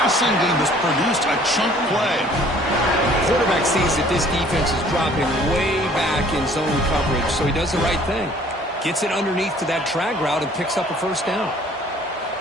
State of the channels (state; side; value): normal; both; correlation 0.55